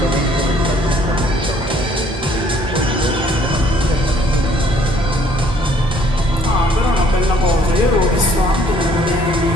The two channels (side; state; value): both; normal; correlation 0.61